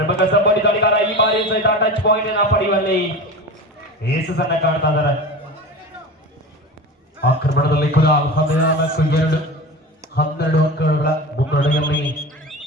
ಸಂಬಂಧಿ ದಾಳಿಗಾರ ಈ ಬಾರಿ ಸಹಿತ ಟಚ್ ಪಾಯಿಂಟ್ ಅನ್ನು ಪಡೆಯುವಲ್ಲಿ ಯಶಸ್ಸನ್ನು ಕಾಣ್ತಾ ಇದ್ದಾರೆ. ಆಕ್ರಮಣದಲ್ಲಿ ಕೂಡ 14-2 12 ಅಂಕಗಳ ಮುನ್ನಡೆಯಲ್ಲಿ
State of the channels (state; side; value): normal; both; correlation 0.30